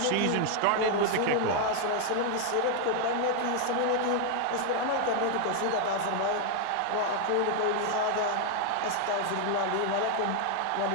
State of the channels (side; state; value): both; different; correlation 0.00